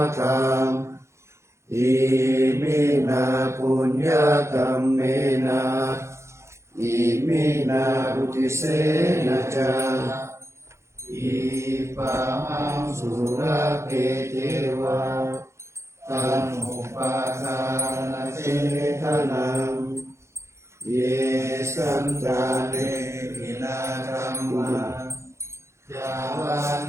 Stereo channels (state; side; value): late; left; 0.13 ms